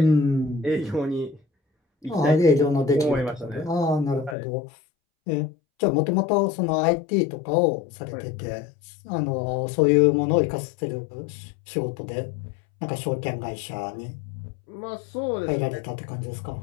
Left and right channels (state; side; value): drops out; right; at 4.4 s